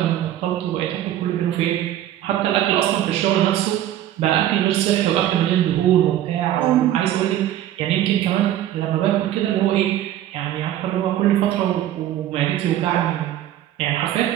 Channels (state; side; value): quieter; left; 12.4 dB